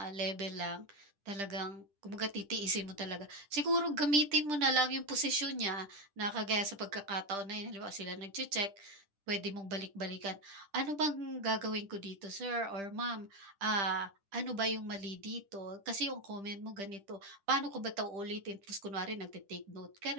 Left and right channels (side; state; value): left; late; 10 ms